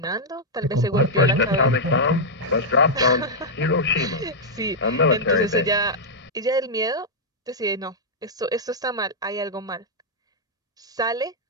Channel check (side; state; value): both; normal; correlation -0.05